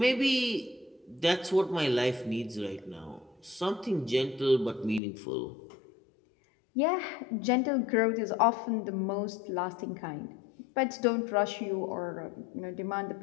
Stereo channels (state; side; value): drops out; right; at 5.0 s